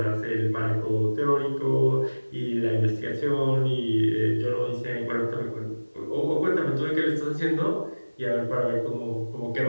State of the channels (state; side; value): inverted; both; correlation -1.00